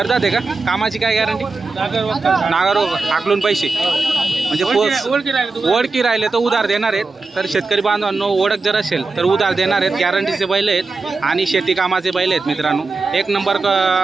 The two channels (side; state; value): left; quieter; 4.0 dB